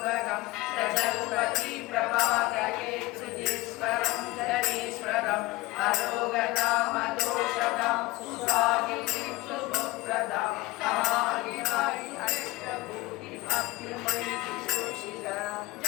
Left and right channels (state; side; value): quieter; right; 20.1 dB